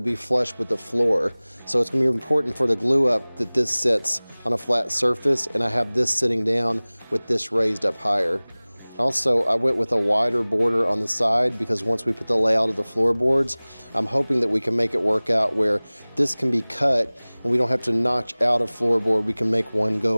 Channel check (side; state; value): both; inverted; correlation -1.00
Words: be flush with the floor. So it's going to be important for the glue up that this sits on a flat surface, and I have this sitting down with this raised up higher. Also, I went with a wider border on the side because once we put the layout of the floorboards, I'm hoping that we can make it work out where this can be cut and we don't have to notch out a floorboard. We can make one